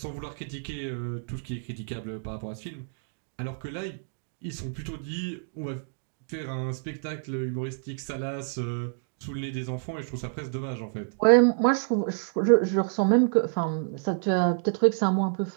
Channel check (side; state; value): left; silent; digital silence